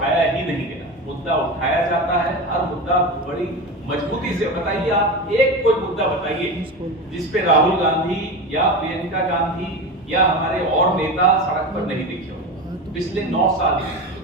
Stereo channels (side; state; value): both; normal; correlation 0.24